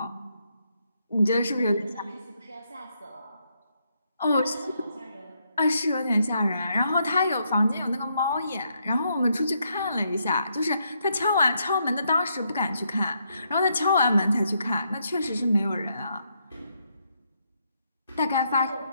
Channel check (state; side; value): inverted; both; correlation -0.77